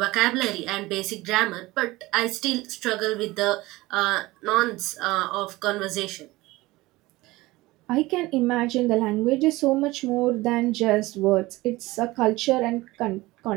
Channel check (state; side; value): quieter; left; 19.8 dB